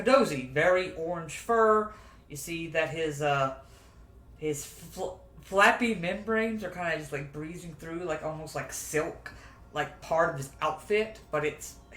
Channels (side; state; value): both; identical; correlation 1.00